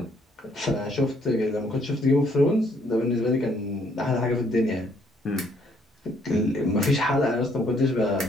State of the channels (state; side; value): normal; both; correlation 0.67